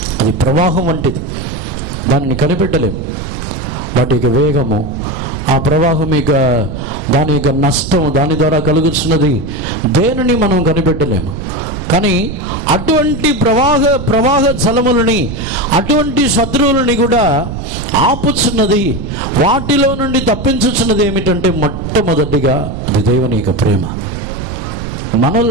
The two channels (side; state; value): right; noise; rumble, 7 dB below the sound